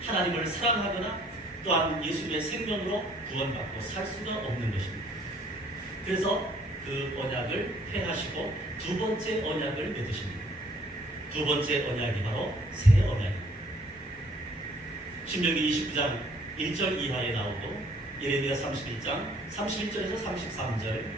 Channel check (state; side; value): normal; both; correlation 0.60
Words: 하나님을 사랑하거나 또한 예수님의 생명으로 구원받고 살 수가 없는 것입니다. 그래서 그 언약을 폐하시고 두 번째 언약을 맺으십니다. 두 번째 언약이 바로 새 언약입니다. 신명기 29장 1절 이하에 나오고 예레미야 31장 31절에서 33절,